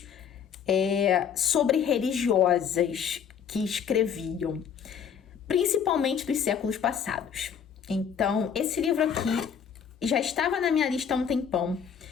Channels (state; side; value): quieter; right; 7.6 dB